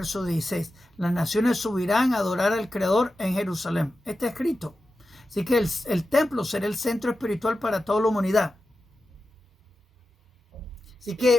16. Las naciones subirán a adorar al Creador en Jerusalén. Está escrito. Así que el templo será el centro espiritual para toda la humanidad. Así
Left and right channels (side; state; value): both; normal; correlation 0.92